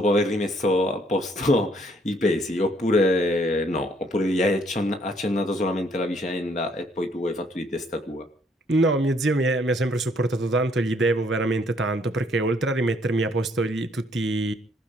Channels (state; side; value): normal; both; correlation 0.66